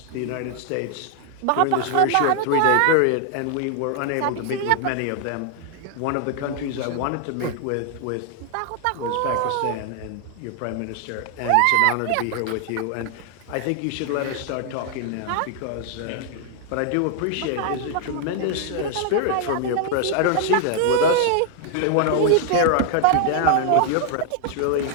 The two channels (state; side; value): different; both; correlation 0.00